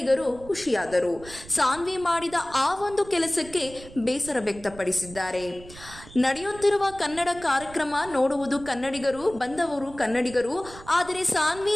ಖುಷಿಯಾದರು. ಸಾನ್ವಿ ಮಾಡಿದ ಆ ಒಂದು ಕೆಲಸಕ್ಕೆ ಬೇಸರ ವ್ಯಕ್ತಪಡಿಸಿದ್ದಾರೆ. ನಡೆಯುತ್ತಿರುವ ಕನ್ನಡ ಕಾರ್ಯಕ್ರಮ ನೋಡುವುದು ಕನ್ನಡಿಗರು, ಬಂದವರು ಕನ್ನಡಿಗರು. ಆದರೆ ಸಾನ್ವಿ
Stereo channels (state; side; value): noise; right; rumble, 18 dB below the sound